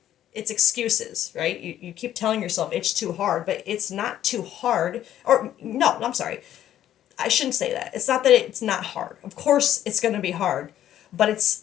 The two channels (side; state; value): right; quieter; 11.7 dB